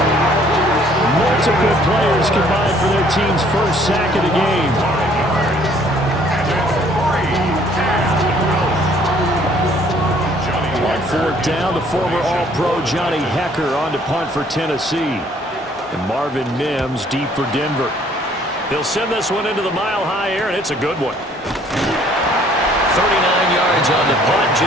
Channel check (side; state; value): both; normal; correlation 0.60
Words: Multiple players combined for their team's first sack of the game. On 4th down, the former All-Pro Johnny Hecker on to punt for Tennessee. And Marvin Mims deep for Denver. He'll send this one into the Mile High air, and it's a good one. 39 yards on the punt,